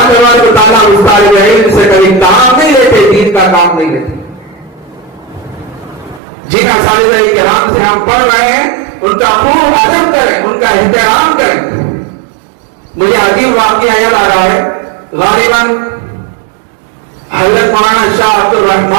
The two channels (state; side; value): drops out; left; at 6.2 s